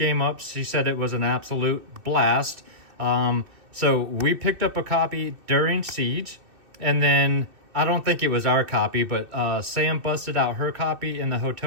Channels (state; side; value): late; left; 2.6 ms